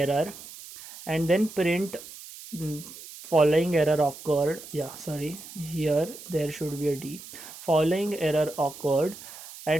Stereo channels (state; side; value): noise; right; hiss, 15 dB below the sound